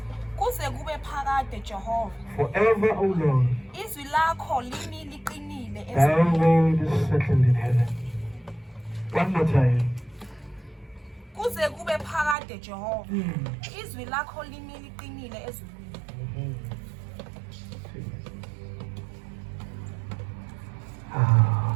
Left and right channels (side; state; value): left; drops out; at 12.4 s